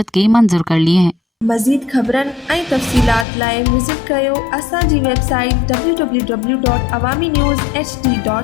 मंजूर कर लिए हैं। मज़ीद ख़बरनि ऐं तफ़सीलात लाइ विज़िट कयो असांजी वेबसाइट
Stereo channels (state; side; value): drops out; right; at 3.2 s